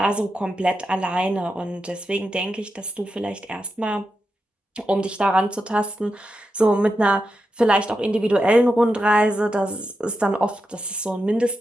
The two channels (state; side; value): normal; both; correlation 0.88